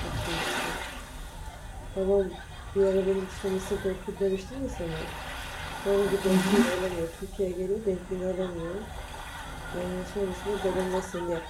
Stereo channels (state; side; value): identical; both; correlation 1.00